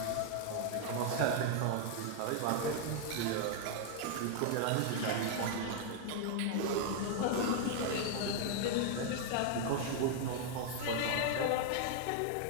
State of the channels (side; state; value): both; different; correlation 0.00